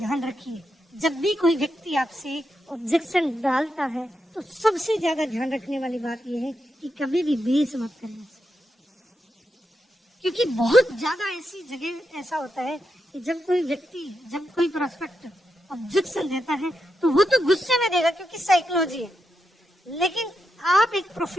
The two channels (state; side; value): normal; both; correlation 0.85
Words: रखिए, जब भी कोई व्यक्ति आपसे ऑब्जेक्शन डालता है तो सबसे ज्यादा ध्यान रखने वाली बात यह है कि कभी भी बेस मत करना, क्योंकि बहुत ज्यादा ऐसी जगह ऐसा होता है कि जब कोई व्यक्ति, जब कोई प्रोस्पेक्ट ऑब्जेक्शन देता है तो वो तो गुस्से में देगा क्योंकि साइकोलॉजी है, लेकिन आप एक